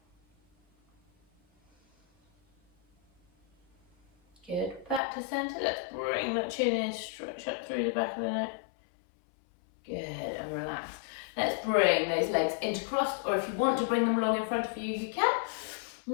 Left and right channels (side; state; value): right; drops out; at 5.0 s